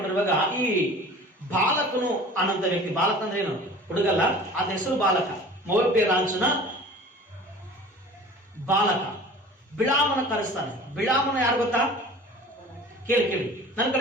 ಈ ಬಾಲಕನು ಅನ್ನೋಂಥ ವ್ಯಕ್ತಿ, ಬಾಲಕ ಅಂದ್ರೆ ಏನು, ಹುಡುಗಲ್ಲ, ಅದ ಹೆಸರು ಬಾಲಕ, ಮೋವಾಬ್ಯ ರಾಜನ ಬಾಲಕ ಬಿಳಾಮನ ಕರೆಸ್ತಾನೆ. ಬಿಳಾಮನ ಯಾರು ಗೊತ್ತಾ? ಕೇಳಿ ನನ್ನ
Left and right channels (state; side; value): normal; both; correlation 0.42